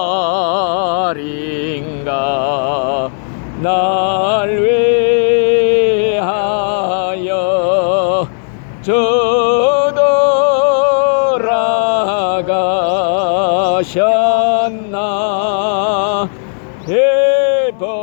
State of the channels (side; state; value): right; silent; 71 dB below the other